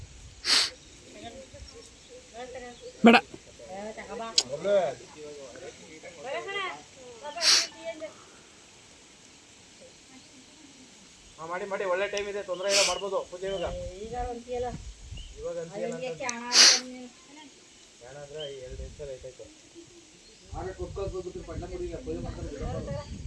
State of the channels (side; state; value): both; identical; correlation 1.00